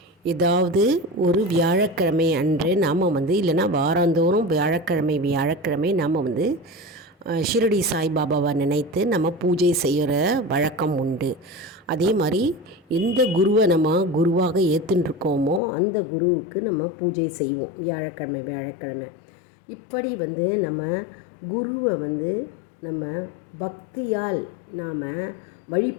ஏதாவது ஒரு வியாழக்கிழமை அன்று நாம் இல்லைன்னா வாரந்தோறும் வியாழக்கிழமை நாம் ஷிரடி சாய்பாபாவை நினைத்து நம்ம பூஜை செய்கிற வழக்கம் உண்டு. அதே மாதிரி எந்த குருவை நம்ம குருவாக ஏற்றுருக்கோமோ அந்த குருவுக்கு நம்ம பூஜை செய்வோம் வியாழக்கிழமை. இப்படி நம்ம குருவை நம்ம பக்தியால் நாம்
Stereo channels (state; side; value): drops out; right; at 15.6 s